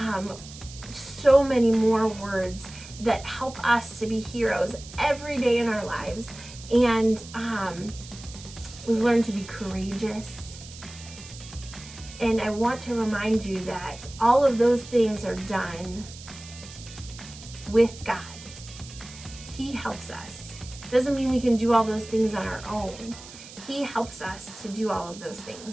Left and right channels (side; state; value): right; noise; hiss, 16 dB below the sound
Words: so many more words that help us to be heroes every day in our lives. And we've learned to be courageous. And I want to remind you that all of those things are done with God. He helps us. Doesn't mean we can do all those things on our own. He helps us to do all of those